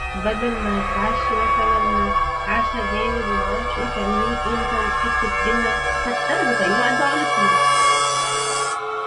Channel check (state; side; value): identical; both; correlation 1.00